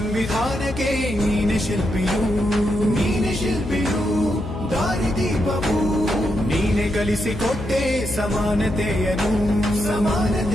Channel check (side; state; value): left; noise; hum, 9 dB below the sound